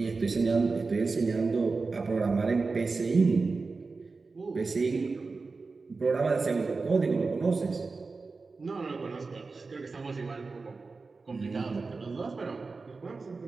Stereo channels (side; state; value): left; quieter; 4.1 dB